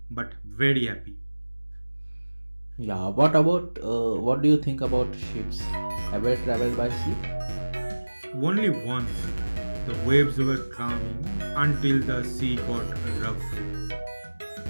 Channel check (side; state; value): both; inverted; correlation -1.00